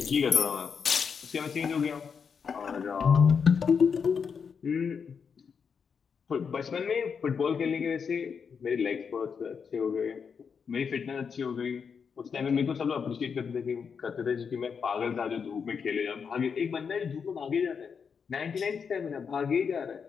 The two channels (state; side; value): quieter; right; 6.3 dB